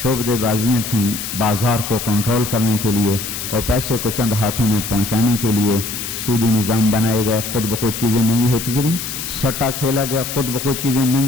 شعبدے بازیاں تھیں بازار کو کنٹرول کرنے کے لیے اور پیسے کو چند ہاتھوں میں پہنچانے کے لیے۔ سودی نظام بنائے گئے، خود بخود چیزیں مہنگی ہوتی چلی، سٹا کھیلا گیا، خود بخود چیزیں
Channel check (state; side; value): noise; left; hiss, 6 dB below the sound